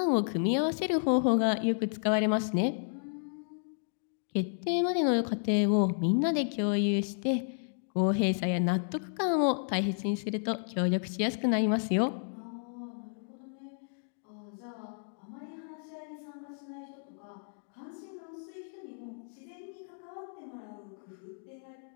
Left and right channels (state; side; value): silent; right; digital silence